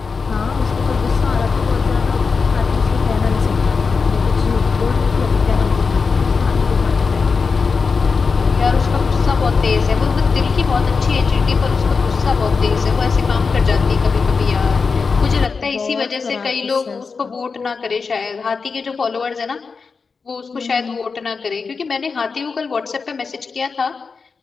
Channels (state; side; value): quieter; right; 4.9 dB